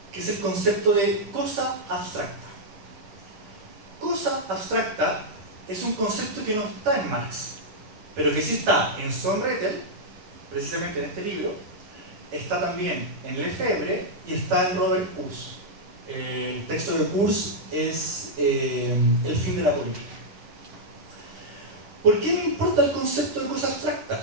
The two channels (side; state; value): left; late; 9.9 ms